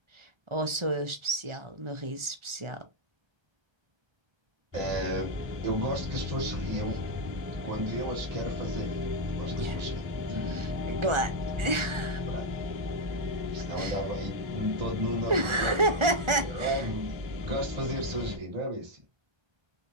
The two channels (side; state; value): left; late; 1.4 ms